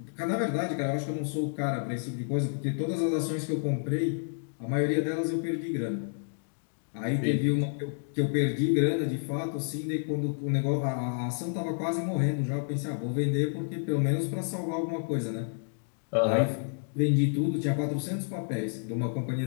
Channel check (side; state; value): right; silent; digital silence